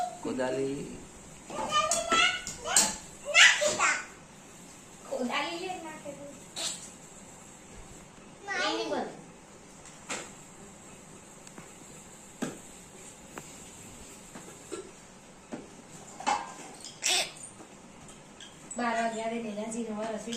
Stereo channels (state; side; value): identical; both; correlation 1.00